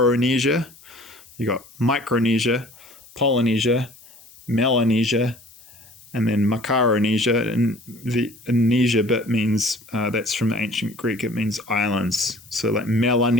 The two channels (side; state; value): left; noise; hiss, 25 dB below the sound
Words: You got Micronesia, Polynesia, Melanesia, and then Macaronesia. And the Nesia bit means, that's from ancient Greek, it means islands. So like